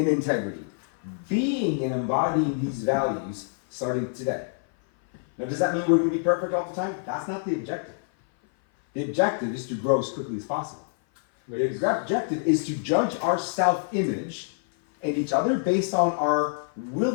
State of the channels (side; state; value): right; silent; 56 dB below the other